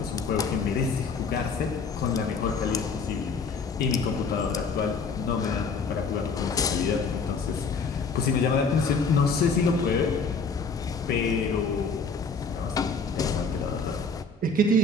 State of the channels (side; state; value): right; quieter; 4.3 dB